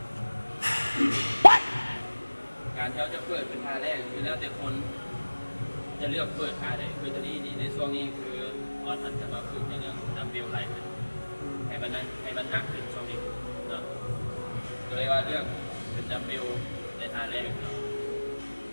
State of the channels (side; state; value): both; inverted; correlation -1.00